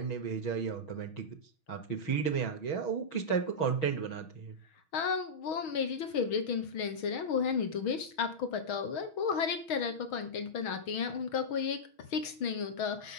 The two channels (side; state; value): right; late; 6.3 ms